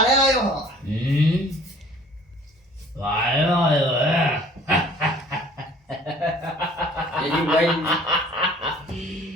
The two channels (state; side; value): normal; both; correlation 0.52